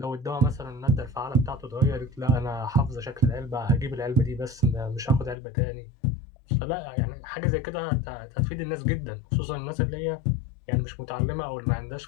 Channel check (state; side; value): drops out; right; at 5.4 s